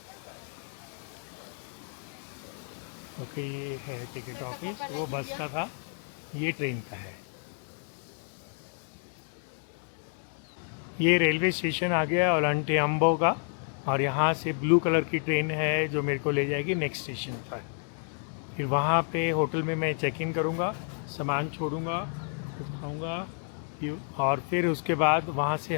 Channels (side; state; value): right; silent; 58 dB below the other